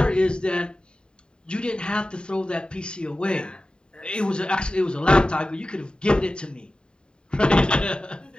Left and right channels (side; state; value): right; late; 0.050 ms